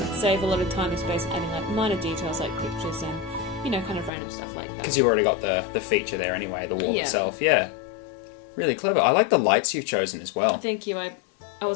save a lot of time and space adding like minor details like pictures and kind of random stuff like that. Because you've already got the feature there anyway, the wall Yeah. itself. Yeah, really clever. I like the lights you've chosen as well. Thank you. I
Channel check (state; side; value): drops out; right; at 4.1 s